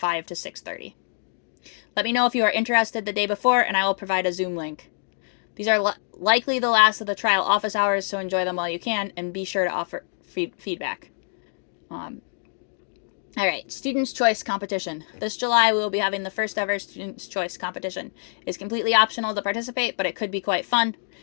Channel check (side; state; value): right; silent; digital silence